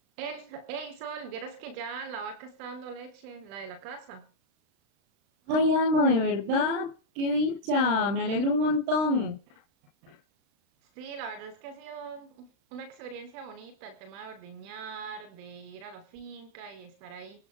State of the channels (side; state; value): left; late; 36 ms